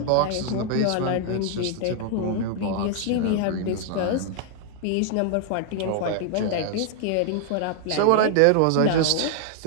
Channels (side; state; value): both; different; correlation 0.00